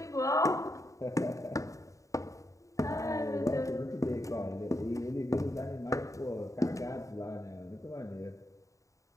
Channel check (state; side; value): late; right; 0.16 ms